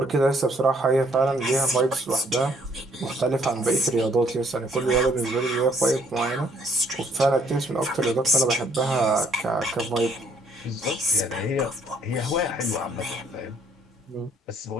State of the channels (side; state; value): both; normal; correlation 0.64